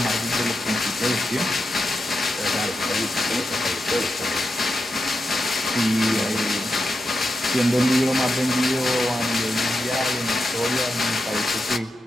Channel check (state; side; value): normal; both; correlation 0.88